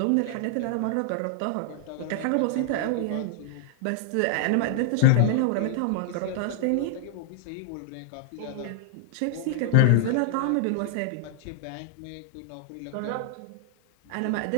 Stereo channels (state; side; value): different; both; correlation -0.01